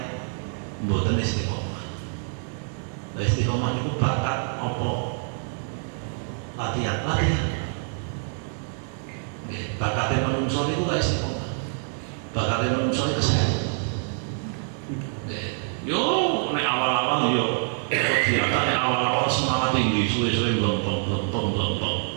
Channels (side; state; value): left; silent; 61 dB below the other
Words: mboten istiqomah. Nah istiqomah itu bakat apa? Latihan. Bakatnya menungso itu gak istiqomah. Bakatnya menungso itu kesehatan. Yo, nek awal-awal yo kegiatan nek awal-awal semangat tinggi, suwe-suwe belum.